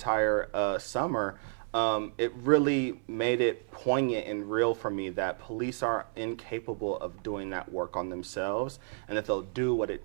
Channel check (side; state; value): left; silent; 57 dB below the other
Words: summer. It really made it poignant and real for me that police are incapable of doing that work on themselves, and that they'll do what